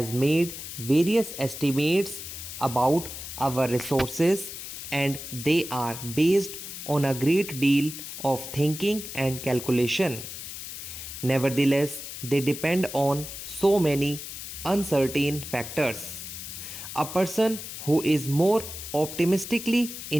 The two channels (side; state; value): left; noise; hiss, 9 dB below the sound